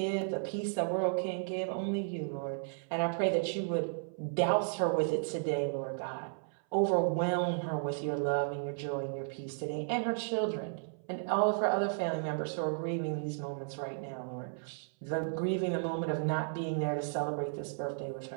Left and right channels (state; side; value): silent; left; 55 dB below the other